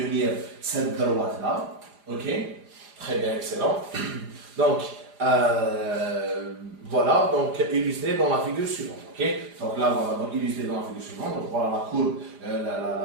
cette droite-là. Okay? Très bien, excellent. Donc, voilà, donc illustré dans la figure suivante. Okay? Donc là, voilà, donc illustré dans la figure suivante. Donc voilà la courbe,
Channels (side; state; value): left; late; 4.9 ms